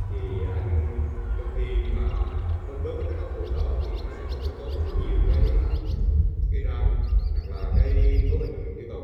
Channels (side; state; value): both; identical; correlation 1.00